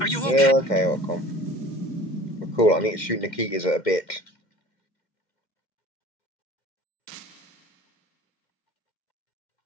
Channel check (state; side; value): late; right; 2.1 ms